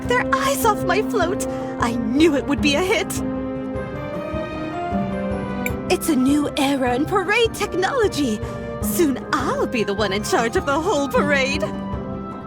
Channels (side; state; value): both; identical; correlation 1.00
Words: their eyes off my float. I knew it would be a hit. It's a new era in parade technology. Soon I'll be the one in charge of the whole parade.